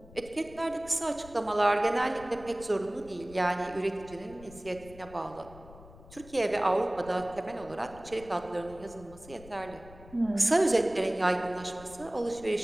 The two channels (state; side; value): noise; left; rumble, 19 dB below the sound